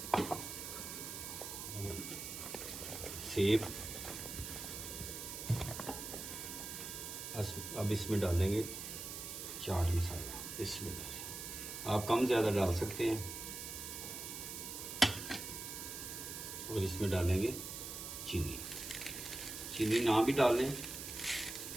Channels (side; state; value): right; noise; hiss, 7 dB below the sound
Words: सेब, अब इसमें डालेंगे चाट मसाला। इसमें आप कम ज्यादा डाल सकते हैं। और इसमें डालेंगे चीनी। चीनी ना भी डालें,